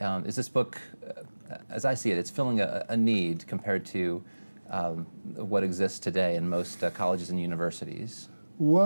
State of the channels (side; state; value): both; inverted; correlation -1.00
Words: Is this book, as I see it, it's filling a need compared to what exists today in most colleges and universities?